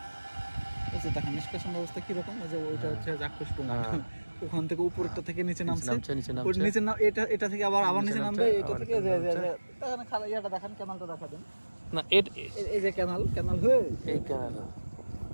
দেখেন নিষ্কাশন ব্যবস্থা কিরকম, ওই যে ওইটা হচ্ছে চাক্ষুষ প্রমাণ। ওখান থেকে উপরটা থেকে নিচে নামছে, নিচে এটা থেকে আবার নিচে নামবে, এটা থেকে দেখেন খালা ইয়াটা দেখেন, ক্যানালটা দেখা দেন না। এই যে ক্যানাল হয়ে এই ক্যানাল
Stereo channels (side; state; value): both; inverted; correlation -1.00